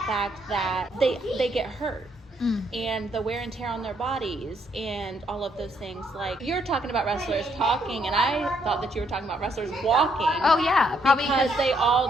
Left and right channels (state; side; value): normal; both; correlation 0.72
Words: that they get hurt. And the wear and tear on their bodies and all of those things. Like, you're talking about wrestlers talking, and I thought that you were talking about wrestlers walking. Oh, yeah. Probably because they